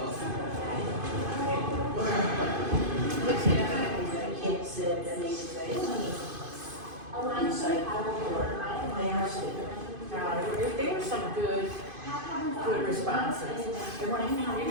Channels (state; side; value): late; left; 2.5 ms